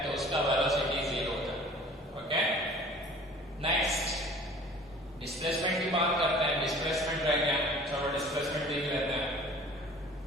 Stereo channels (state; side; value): normal; both; correlation 0.47